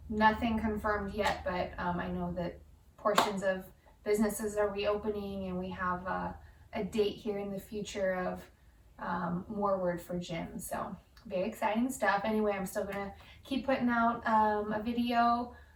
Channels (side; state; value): both; identical; correlation 1.00